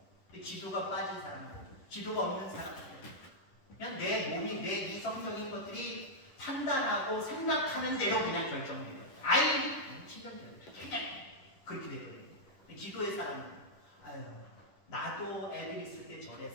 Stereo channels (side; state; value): right; late; 10 ms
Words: 근데 기도가 빠진 사람들, 기도가 없는 사람들, 그냥 내 몸이 내 이성적인 것들이 판단하고 생각하는 대로 그냥 결정돼요. 아이, 신경질 그렇게 되거든요. 기도의 사람은 아유, 나도 애들 있을 때